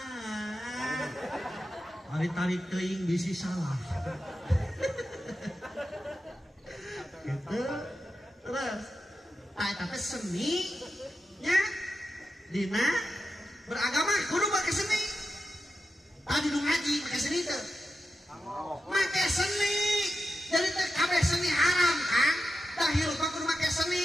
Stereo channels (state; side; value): normal; both; correlation 0.90